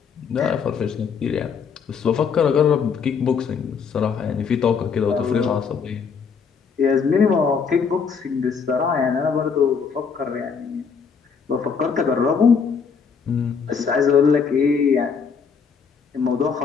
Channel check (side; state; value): right; quieter; 6.0 dB